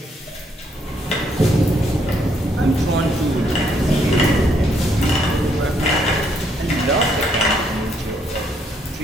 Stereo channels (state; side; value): normal; both; correlation 0.71